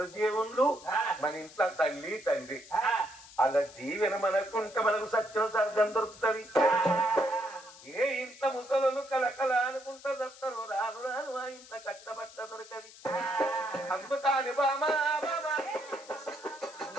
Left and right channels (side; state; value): left; noise; hiss, 19 dB below the sound